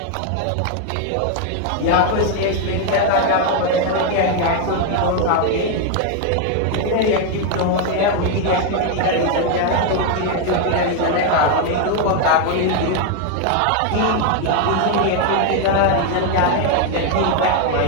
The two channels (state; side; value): different; both; correlation 0.01